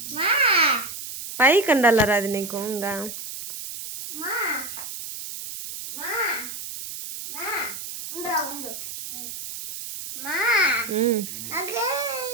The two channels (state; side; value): noise; right; hiss, 9 dB below the sound